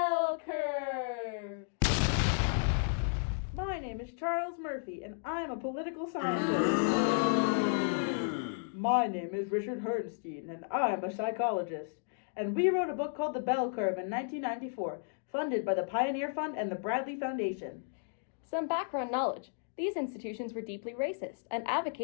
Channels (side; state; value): right; silent; digital silence